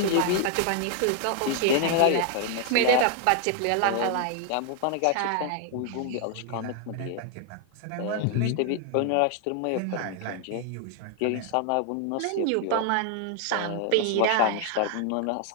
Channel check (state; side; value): different; both; correlation 0.00